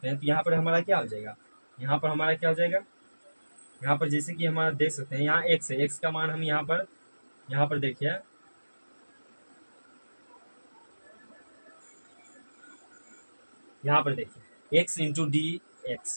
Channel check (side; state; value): both; inverted; correlation -1.00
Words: हैं, तो यहाँ पर हमारा क्या हो जाएगा, यहाँ पर हमारा क्या हो जाएगा, यहाँ पर जैसे कि हमारा देख सकते हैं यहाँ x है, x का मान हम यहाँ पर देखिए, यहाँ पर देखिए x into D